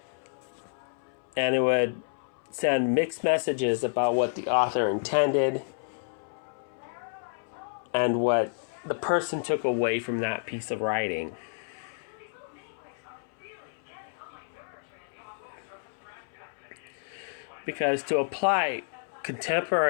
And it would send mixed messages about what the author intended and what the person took away from that piece of writing. Because to apply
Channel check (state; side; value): silent; right; 58 dB below the other